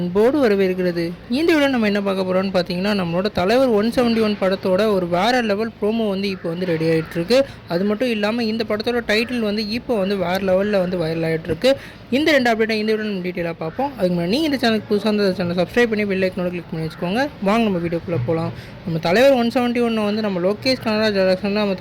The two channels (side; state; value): both; identical; correlation 1.00